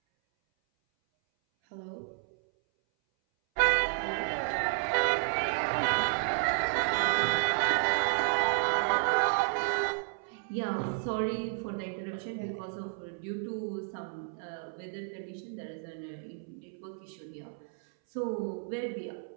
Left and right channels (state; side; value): silent; left; 57 dB below the other